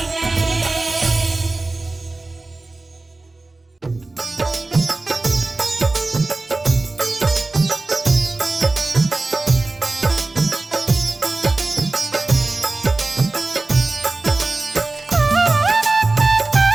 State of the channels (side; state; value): left; quieter; 3.2 dB